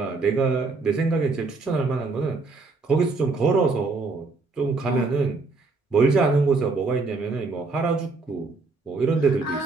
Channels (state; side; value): quieter; left; 3.8 dB